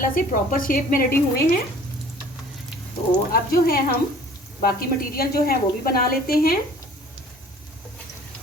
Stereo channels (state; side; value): normal; both; correlation 0.50